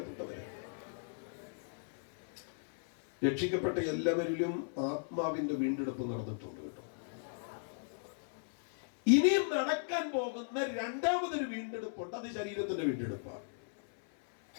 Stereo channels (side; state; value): right; silent; 54 dB below the other